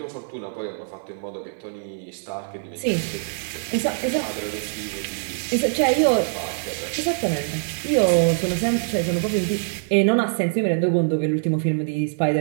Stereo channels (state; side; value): silent; left; 63 dB below the other